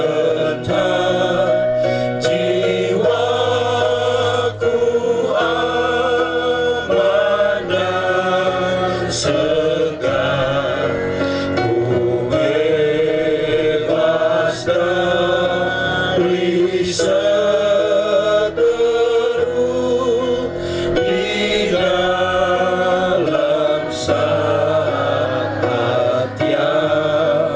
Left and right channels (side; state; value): both; identical; correlation 1.00